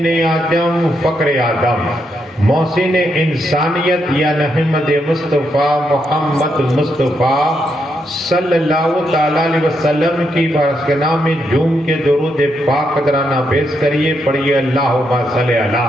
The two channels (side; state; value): both; normal; correlation 0.80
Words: اعظم، فقر آدم، محسن انسانیت یا احمد مصطفیٰ محمد مصطفیٰ صلی اللہ تعالیٰ علیہ وسلم کی بارگاہ میں جھوم کے درود پاک قدرانہ پیش کریے، پڑھیے اللہم صلی علی